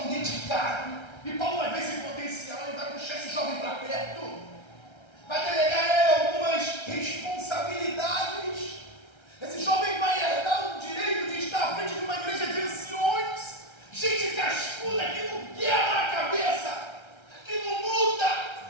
dedicado. E Paulo vai ver esse potencial e vai puxar esse jovem para perto. Vai delegar a ele algumas responsabilidades. Esse jovem vai herdar o direito de estar à frente de uma igreja de anciões, gente cascuda que não quebra a cabeça, que não muda,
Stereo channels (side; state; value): right; late; 1.3 ms